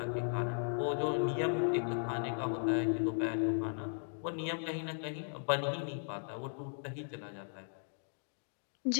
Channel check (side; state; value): right; silent; digital silence